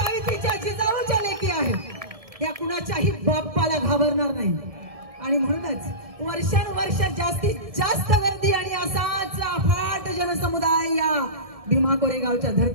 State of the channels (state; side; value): late; left; 1.7 ms